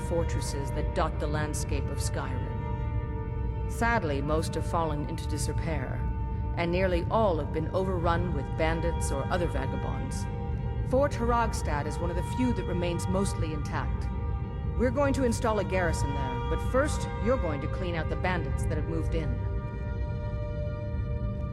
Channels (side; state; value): both; identical; correlation 1.00